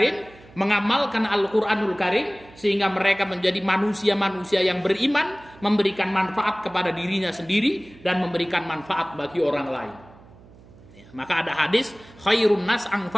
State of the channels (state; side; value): noise; right; hum, 23 dB below the sound